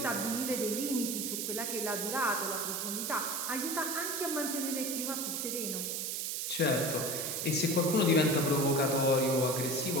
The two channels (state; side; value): noise; right; hiss, 2 dB below the sound